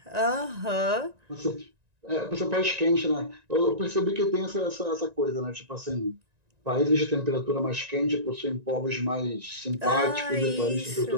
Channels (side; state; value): left; late; 1.9 ms